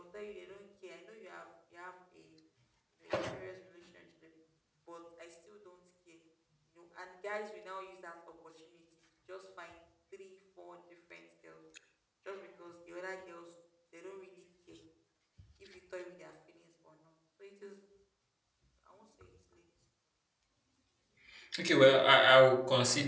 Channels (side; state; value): both; identical; correlation 1.00